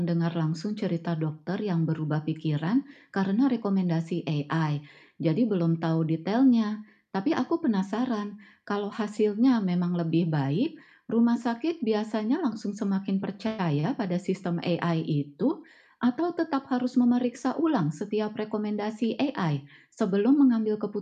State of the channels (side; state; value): both; identical; correlation 1.00